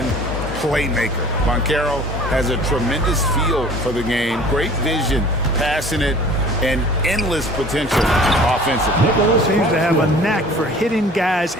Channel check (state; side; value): normal; both; correlation 0.47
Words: playmaker. Banchero has a tremendous feel for the game, great vision, passing it, and endless potential offensively. Seems to have a knack for hitting guys